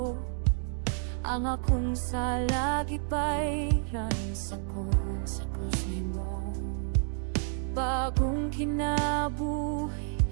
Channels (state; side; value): silent; left; digital silence